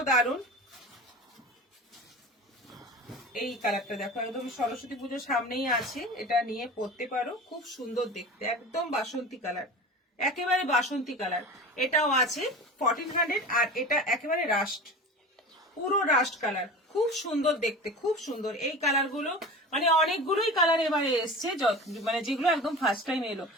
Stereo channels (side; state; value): both; normal; correlation 0.33